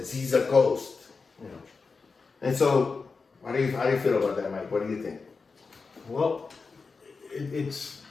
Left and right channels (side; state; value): right; quieter; 4.5 dB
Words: He's a ghost. You know? And so, how do you feel about that, Mike? What do you think? Well, it's